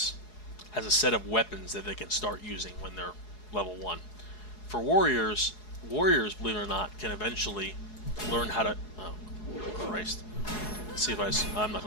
has a set of weapons that they can start using when they're level 1. For warriors, believe it or not, can eventually learn how to... Oh, Christ. Let's see if I'm not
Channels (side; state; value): right; late; 4.7 ms